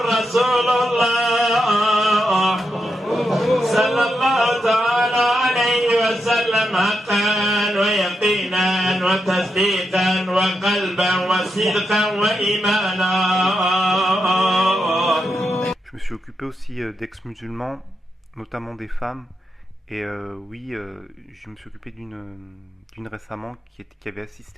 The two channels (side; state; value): both; normal; correlation 0.85